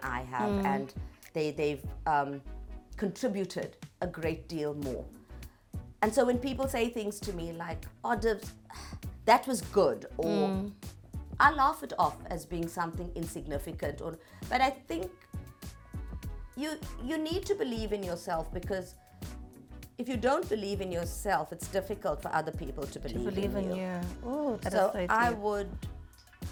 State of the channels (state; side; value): identical; both; correlation 1.00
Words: I have, and they've contributed a great deal more. And so when people say things to me like, "Oh, Divs, that was good," or I laugh it off as being something insignificant. But I think you need to believe in yourself, because if you don't believe in yourself, it's difficult for other people to believe in you. Ooh, that So is so